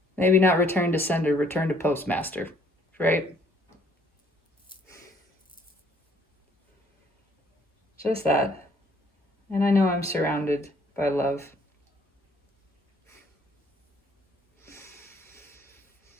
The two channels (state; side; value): normal; both; correlation 0.62